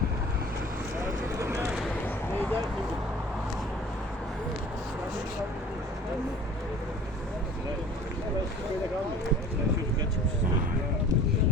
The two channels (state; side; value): normal; both; correlation 0.46